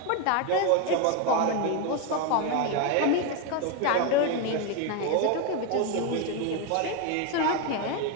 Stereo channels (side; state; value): both; different; correlation 0.02